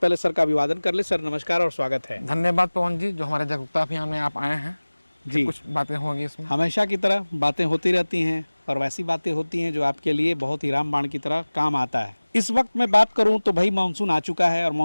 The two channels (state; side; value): inverted; both; correlation -1.00